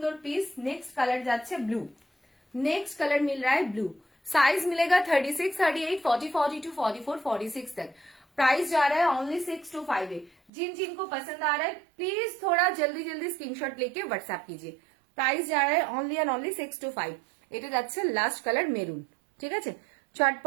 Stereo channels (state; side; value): drops out; left; at 10.5 s